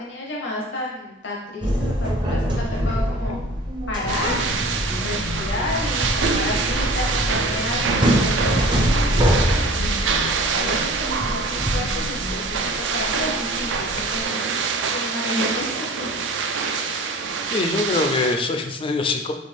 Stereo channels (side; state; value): both; normal; correlation 0.43